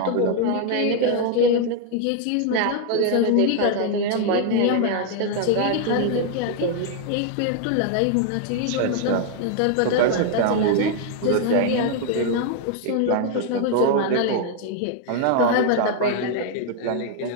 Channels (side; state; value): both; different; correlation 0.00